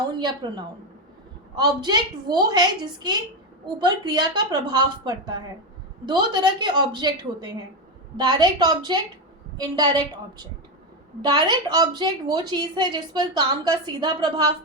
या प्रोनाउन। ऑब्जेक्ट वो है जिसके ऊपर क्रिया का प्रभाव पड़ता है। दो तरह के ऑब्जेक्ट होते हैं, direct object, indirect object. Direct object वो चीज़ है जिस पर काम का सीधा प्रभाव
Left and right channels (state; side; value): normal; both; correlation 0.10